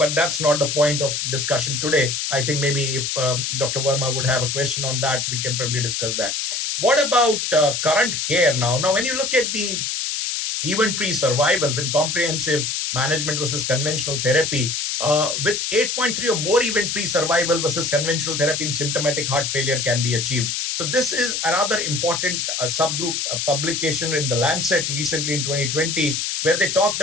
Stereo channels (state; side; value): noise; left; hiss, 1 dB below the sound